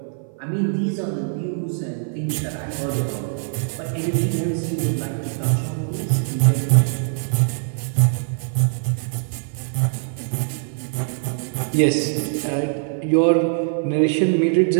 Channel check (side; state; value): left; silent; 56 dB below the other